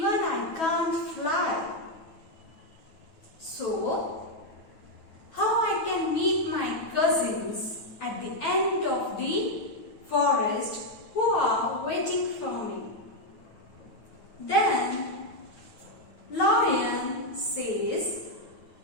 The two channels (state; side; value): late; right; 9.3 ms